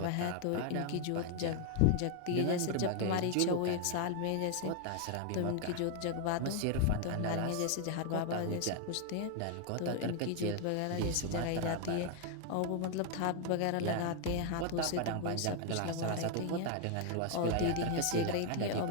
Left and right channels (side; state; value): both; different; correlation 0.00